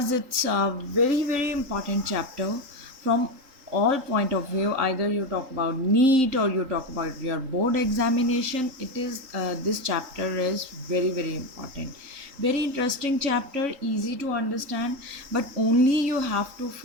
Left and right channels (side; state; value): left; late; 3.8 ms